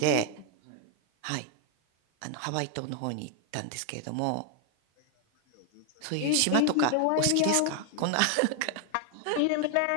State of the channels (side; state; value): both; different; correlation 0.00